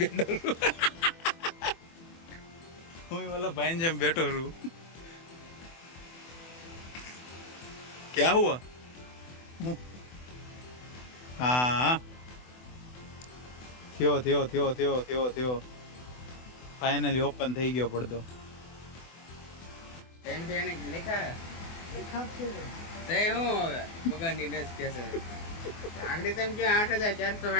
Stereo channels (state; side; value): late; right; 24 ms